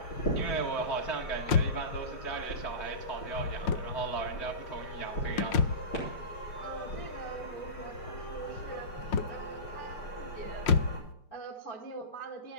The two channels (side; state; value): right; late; 5.6 ms